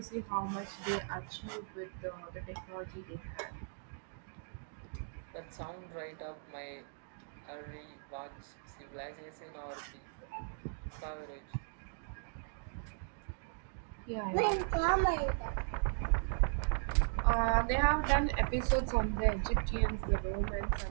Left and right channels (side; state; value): left; silent; digital silence